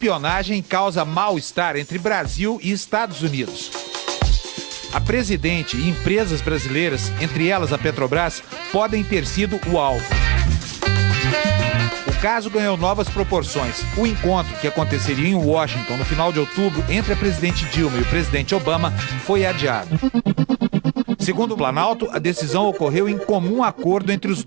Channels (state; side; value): quieter; left; 28.6 dB